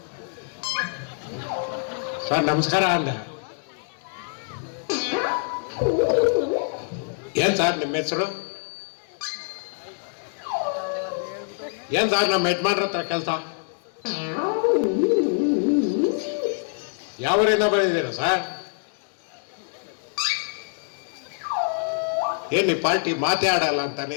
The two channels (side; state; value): right; silent; 62 dB below the other